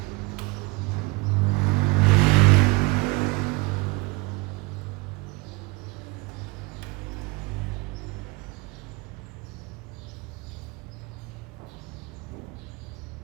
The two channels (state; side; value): quieter; left; 25.5 dB